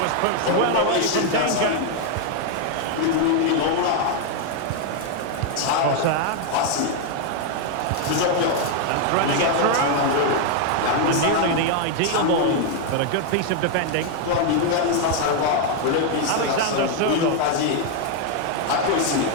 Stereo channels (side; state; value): both; different; correlation 0.01